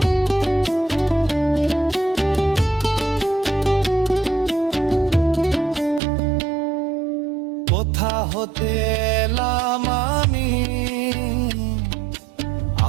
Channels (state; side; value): drops out; left; at 6.0 s